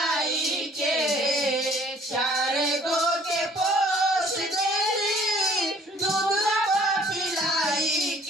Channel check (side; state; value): both; normal; correlation 0.56